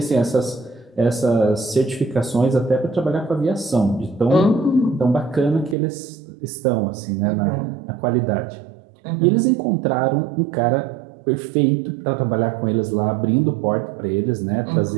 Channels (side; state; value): left; drops out; at 5.8 s